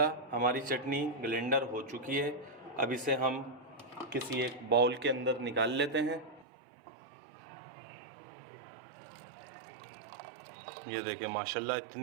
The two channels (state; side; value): drops out; left; at 6.5 s